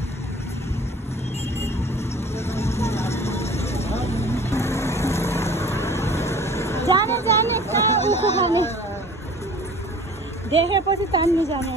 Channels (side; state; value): both; normal; correlation 0.46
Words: जाने जाने कहाँ उखु खाने देखेपछि तान्नु जाने